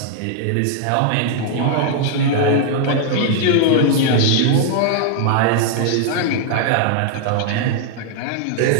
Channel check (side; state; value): both; different; correlation -0.01